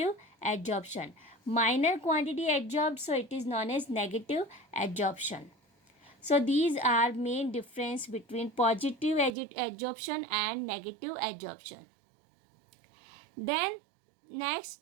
adsorption. Minor quantity adsorbed, so it is known as negative adsorption. So these are main difference between positive adsorption and negative adsorption. Then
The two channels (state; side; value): drops out; left; at 9.3 s